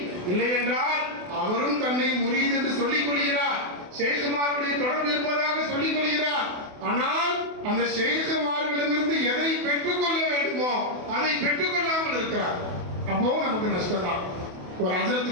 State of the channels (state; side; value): late; left; 28 ms